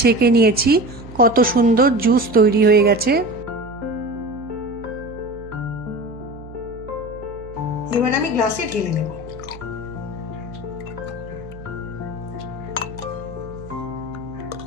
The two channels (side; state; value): right; noise; hum, 16 dB below the sound